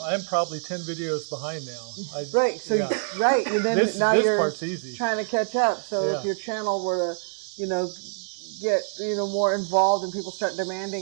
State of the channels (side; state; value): left; silent; digital silence